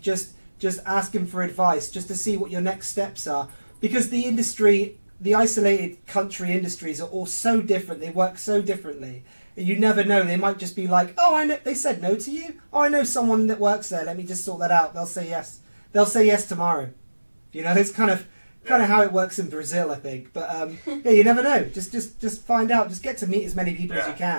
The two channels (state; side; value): inverted; both; correlation -1.00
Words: Just asking for advice, just to see what your next steps are, because the industry. The isolated country industries are all so different. They work so differently. You never know. They might just be like, "Oh, I know they said no to you. Oh, I know someone that works there. Let me just sort that out." They'll say yes. They'll say yes tomorrow. You know, it's kind of how it works in Brazil, I think. But you never know. Just find out. Just get to meet as many people as you